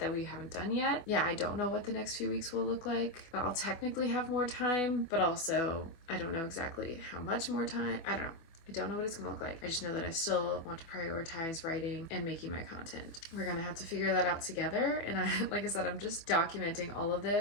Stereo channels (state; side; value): late; right; 24 ms